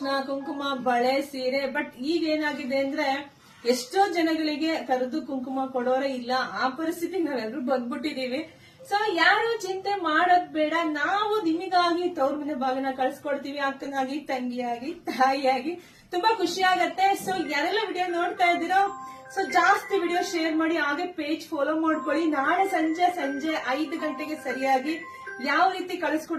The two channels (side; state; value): both; identical; correlation 1.00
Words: ಕುಂಕುಮ ಬಳೆ ಸೀರೆ. ಬಟ್ ಈಗ ಏನಾಗಿದೆ ಅಂದ್ರೆ ಎಷ್ಟೋ ಜನಗಳಿಗೆ ಕರೆದು ಕುಂಕುಮ ಕೊಡೋರೇ ಇಲ್ಲ. ಆ ಪರಿಸ್ಥಿತಿ ನಾವೆಲ್ಲರೂ ಬಂದ್ಬಿಟ್ಟಿದೀವಿ. ಸೊ ಯಾರು ಚಿಂತೆ ಮಾಡೋದ್ ಬೇಡ, ನಾವು ನಿಮಗಾಗಿ ತವ್ರ ಮನೆ ಬಾಗಿನ ಕಳ್ಸಿಕೊಡ್ತೀವಿ. ಅಕ್ಕನಾಗಿ, ತಂಗಿಯಾಗಿ, ತಾಯಿಯಾಗಿ ತುಂಬಾ ಖುಷಿ ಆಗತ್ತೆ. ಸೊ ಯಾರೆಲ್ಲ ವಿಡಿಯೋ ನೋಡ್ತಾ ಇದ್ದೀರೋ ಸೊ ಜಾಸ್ತಿ ವಿಡಿಯೋ ಶೇರ್ ಮಾಡಿ, ಹಾಗೆ ಪೇಜ್ ಫಾಲೋ ಮಾಡ್ಕೊಳ್ಳಿ. ನಾಳೆ ಸಂಜೆ 5 ಗಂಟೆಗೆ ಸರಿಯಾಗಿ ಯಾವ ರೀತಿ